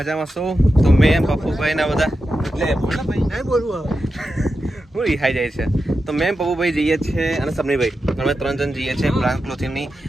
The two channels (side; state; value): both; normal; correlation 0.90